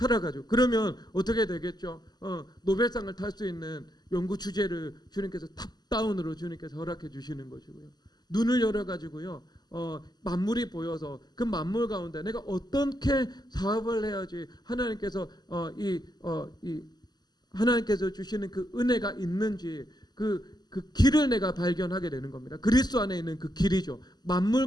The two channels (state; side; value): late; right; 0.20 ms